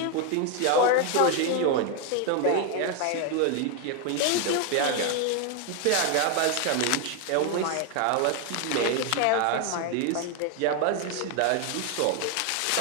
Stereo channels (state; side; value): different; both; correlation 0.01